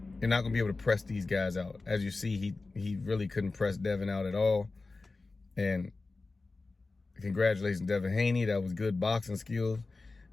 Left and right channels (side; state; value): right; quieter; 3.6 dB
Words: You're not going to be able to press these guys out. As you see, he really couldn't press Devin out at all. And congratulations, Devin Haney. That was good boxing skills.